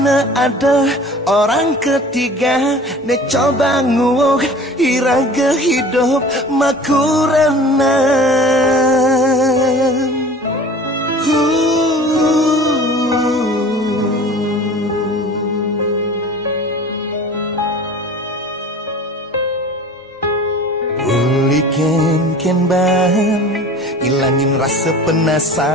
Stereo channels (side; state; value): both; normal; correlation 0.43